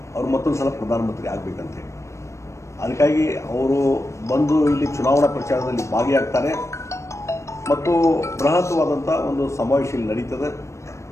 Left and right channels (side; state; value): right; late; 0.14 ms